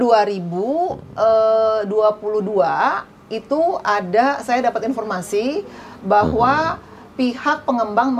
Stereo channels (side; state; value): both; identical; correlation 1.00